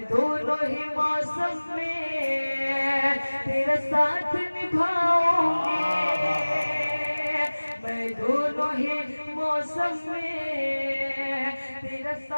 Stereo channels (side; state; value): both; inverted; correlation -1.00